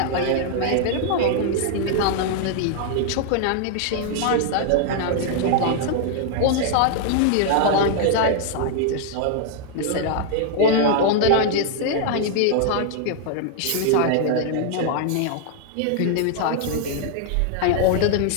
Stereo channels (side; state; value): both; different; correlation 0.00